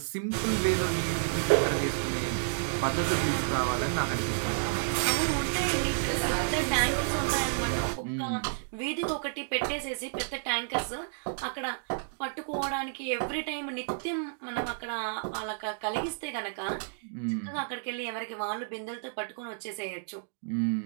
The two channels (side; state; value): left; silent; digital silence